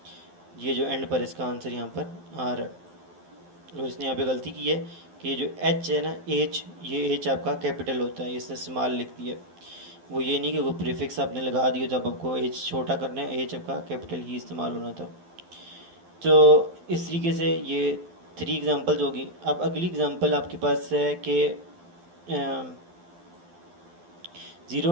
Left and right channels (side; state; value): left; late; 12 ms